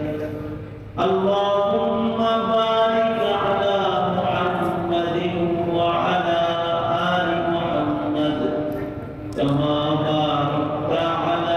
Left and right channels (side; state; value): both; identical; correlation 1.00